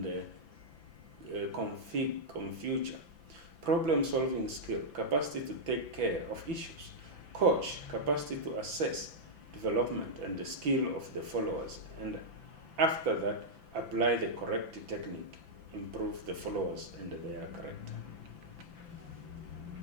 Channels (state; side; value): late; left; 6.0 ms